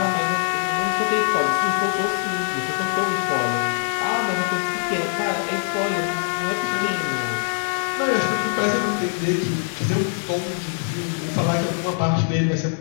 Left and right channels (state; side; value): silent; right; digital silence